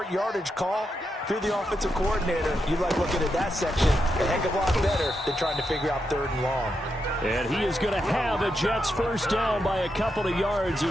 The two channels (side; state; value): both; normal; correlation 0.84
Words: yardage call. If you're the offensive coordinator, you like looking at that section a heck of a lot better than trying to figure out 3rd and long. And he is going to have a Jets first down by a couple of yards